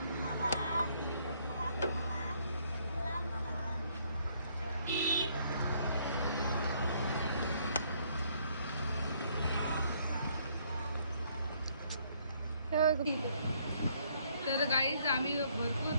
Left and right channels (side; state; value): both; inverted; correlation -0.67